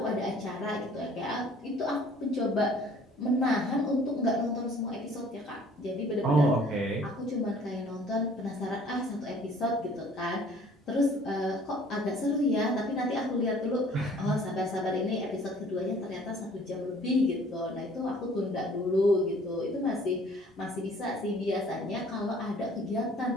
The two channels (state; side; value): normal; both; correlation 0.54